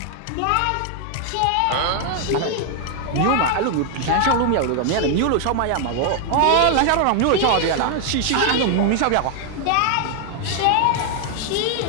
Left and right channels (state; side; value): different; both; correlation 0.00